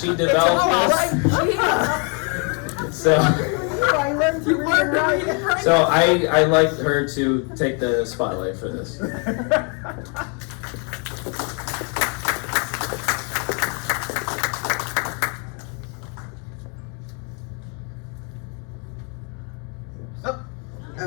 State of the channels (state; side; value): quieter; right; 36.5 dB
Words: developed this. So I learned to read and write. so I like her to take the spotlight for this.